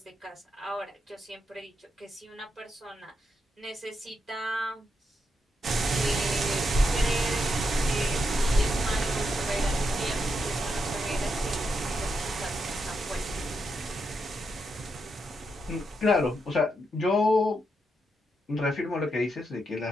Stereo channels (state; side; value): normal; both; correlation 0.82